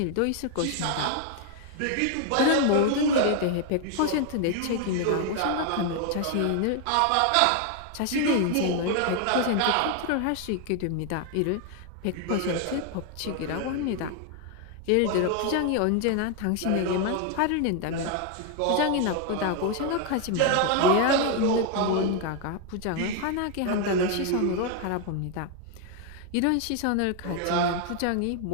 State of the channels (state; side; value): different; both; correlation 0.01